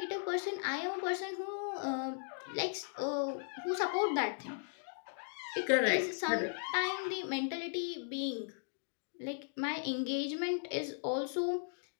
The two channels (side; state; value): right; silent; digital silence